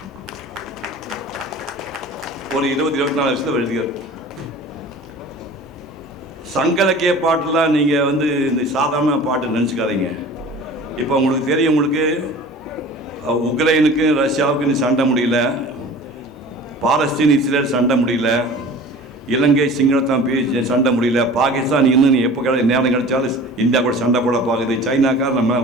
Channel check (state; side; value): normal; both; correlation 0.41